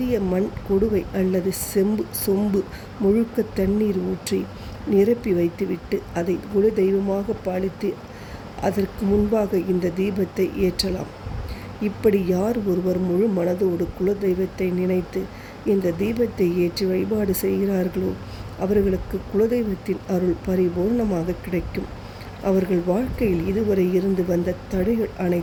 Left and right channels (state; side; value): identical; both; correlation 1.00